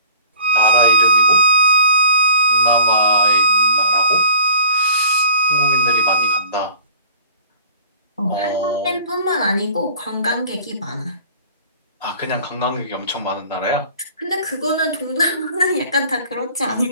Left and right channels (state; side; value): inverted; both; correlation -0.47